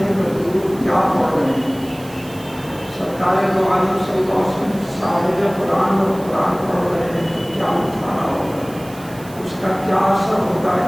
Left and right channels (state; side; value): noise; right; hiss, 20 dB below the sound